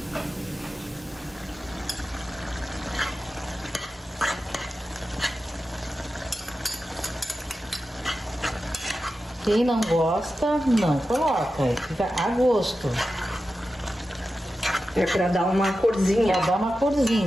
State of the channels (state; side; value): normal; both; correlation 0.92